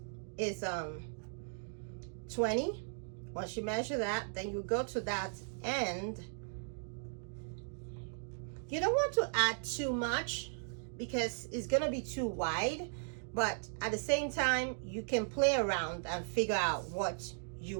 is 20. Once you measure that, then you go to that end. You don't want to add too much because it's gonna be too wide, but at the same time you can play around and figure out what you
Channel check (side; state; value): left; silent; digital silence